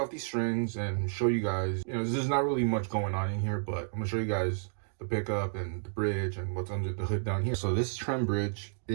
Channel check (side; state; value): left; silent; digital silence